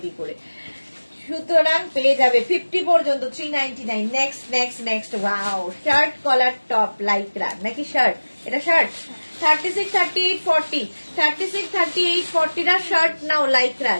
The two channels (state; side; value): inverted; both; correlation -1.00